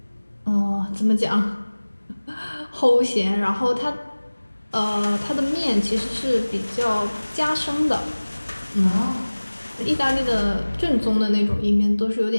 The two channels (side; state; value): both; inverted; correlation -1.00